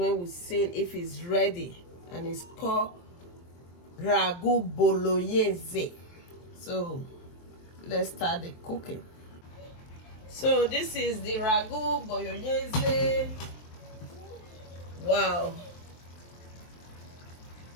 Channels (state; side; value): late; right; 23 ms